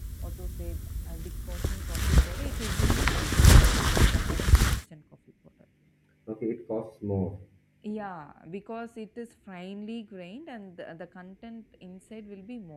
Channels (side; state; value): both; identical; correlation 1.00